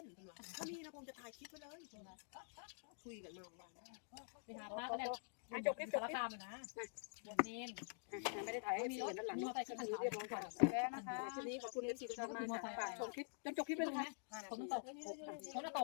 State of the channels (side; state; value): right; silent; digital silence